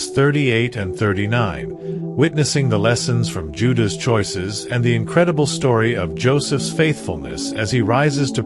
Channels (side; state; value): both; identical; correlation 1.00